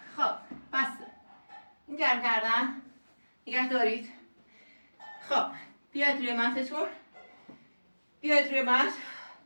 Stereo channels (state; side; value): inverted; both; correlation -1.00